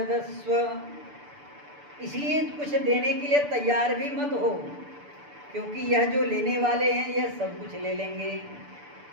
इसलिए कुछ देने के लिए तैयार भी मत हो, क्योंकि यह जो लेने वाले हैं यह सब कुछ ले लेंगे,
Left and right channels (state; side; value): late; left; 6.9 ms